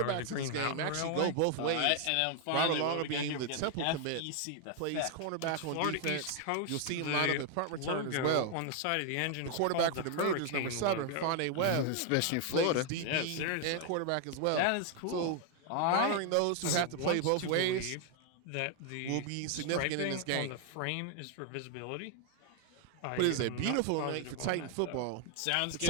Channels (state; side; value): different; both; correlation 0.00